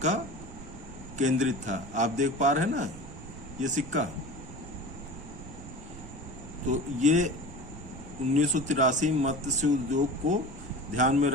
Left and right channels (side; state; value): right; noise; rumble, 14 dB below the sound